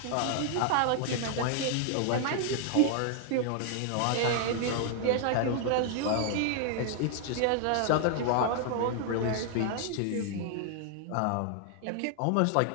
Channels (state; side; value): different; both; correlation 0.00